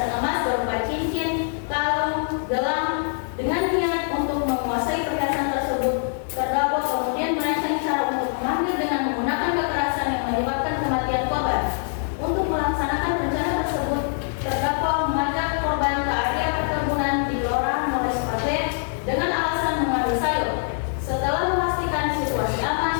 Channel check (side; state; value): right; silent; 63 dB below the other